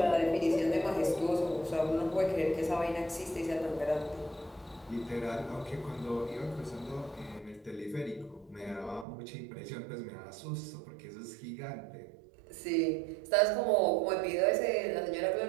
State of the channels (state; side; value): drops out; left; at 9.1 s